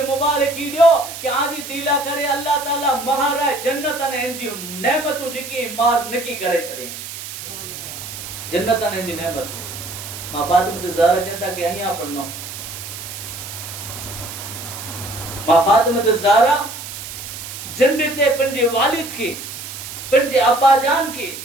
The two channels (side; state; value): right; noise; hiss, 10 dB below the sound